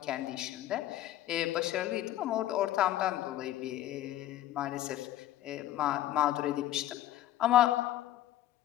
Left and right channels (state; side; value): quieter; right; 13.8 dB